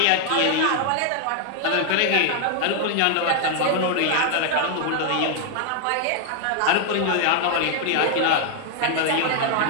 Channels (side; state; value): both; different; correlation 0.00